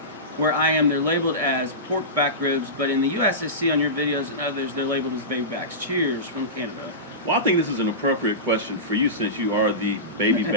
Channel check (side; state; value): both; normal; correlation -0.20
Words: where I am, they're labeled as pork back ribs, but in the U.S., I see on your videos and others, they're labeled as baby backs. Cheers from Canada. Well, I think this is an appropriate question for you, since you are the baby